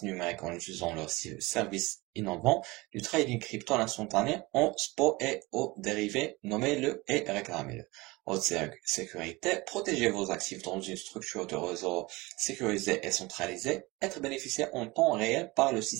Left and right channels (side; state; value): left; quieter; 22.7 dB